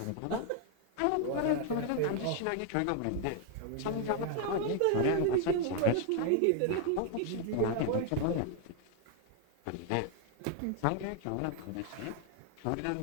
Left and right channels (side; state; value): both; different; correlation 0.00